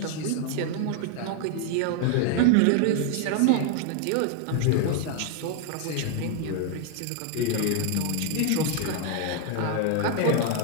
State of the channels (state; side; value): different; both; correlation 0.00